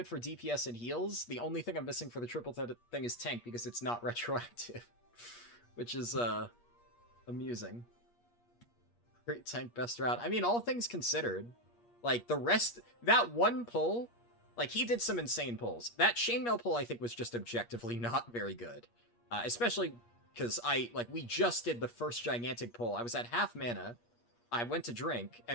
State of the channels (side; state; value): right; late; 8.4 ms